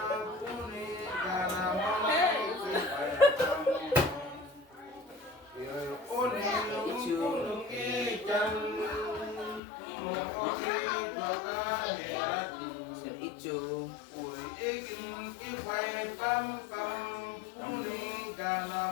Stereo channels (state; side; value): drops out; right; at 9.6 s